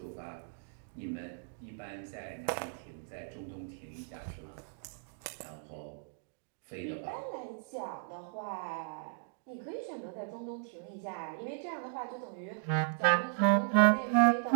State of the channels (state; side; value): silent; left; digital silence